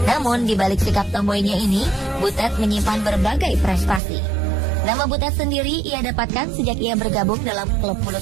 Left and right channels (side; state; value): left; drops out; at 4.0 s